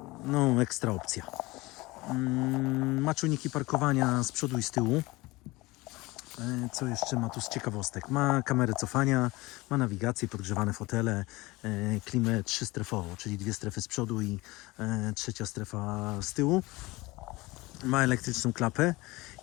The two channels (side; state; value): right; quieter; 21.6 dB